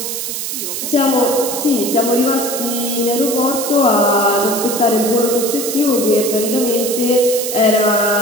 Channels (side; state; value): right; noise; hiss, 4 dB below the sound